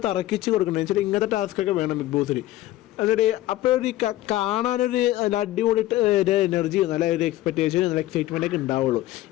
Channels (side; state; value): right; quieter; 15.6 dB